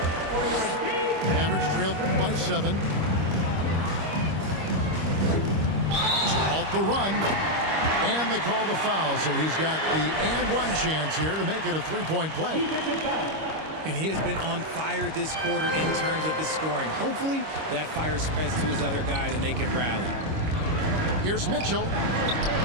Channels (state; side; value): late; left; 25 ms